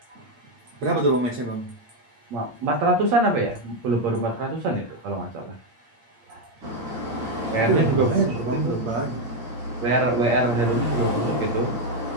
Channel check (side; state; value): left; late; 8.6 ms